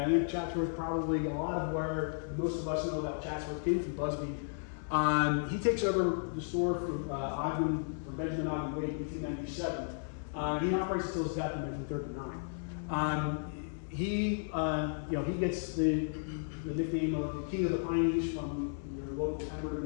I think Chatsworth probably a lot of where most of us know about Chatsworth came from Busby. He takes over the store from Benjamin Ogden Wade in 1897. He operates until his death in 1939. He gets the nickname of the King of the Pineys from your local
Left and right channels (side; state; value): right; silent; 55 dB below the other